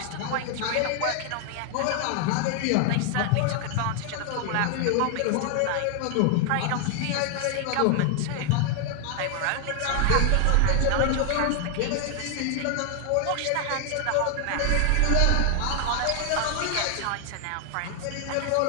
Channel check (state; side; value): different; both; correlation 0.00